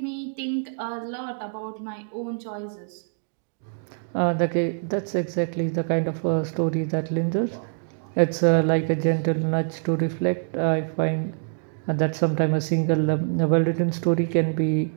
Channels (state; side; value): silent; left; 62 dB below the other